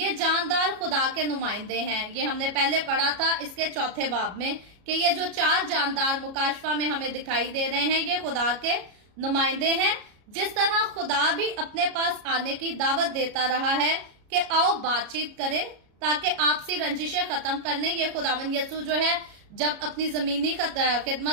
जानदार खुदा के नुमाइंदे हैं। ये हमने पहले पढ़ा था इसके 4 बाब में कि ये जो 4 जानदार मुकाशफा में हमें दिखाई दे रहे हैं, ये खुदा के नुमाइंदे हैं। जिस तरह खुदा भी अपने पास आने की दावत देता रहा है कि आओ बातचीत करें ताकि आपसी रंजिशें खत्म करने, ये खुदावन यीशु जो है जब अपनी जमीनी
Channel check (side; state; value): left; late; 33 ms